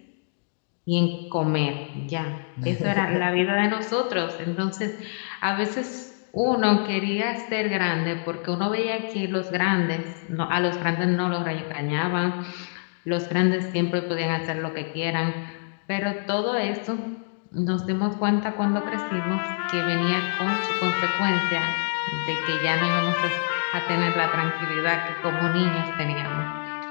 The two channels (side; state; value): right; silent; digital silence